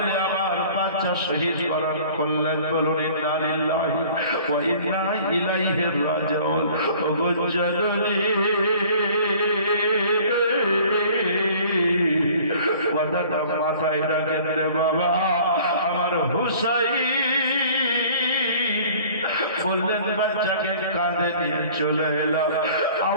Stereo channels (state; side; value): inverted; both; correlation -0.50